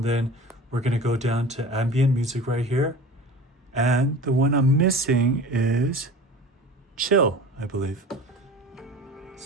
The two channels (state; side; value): normal; both; correlation 0.37